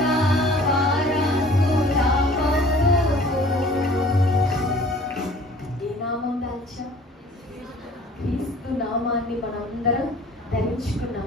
వారసులమౌను. ఏ నామం దాల్చాం? క్రీస్తు నామాన్ని మనందరం ధరించుకున్నాం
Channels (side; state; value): both; normal; correlation 0.50